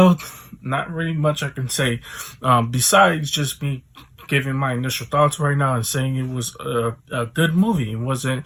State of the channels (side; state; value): both; identical; correlation 1.00